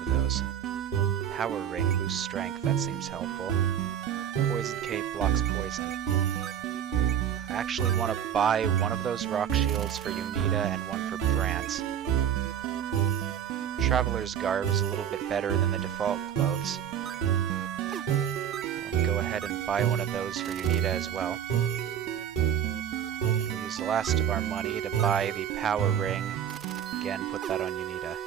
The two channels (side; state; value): left; quieter; 9.3 dB